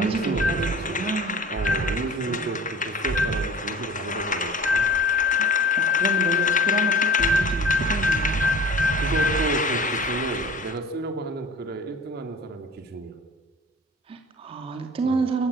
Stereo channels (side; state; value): both; normal; correlation 0.43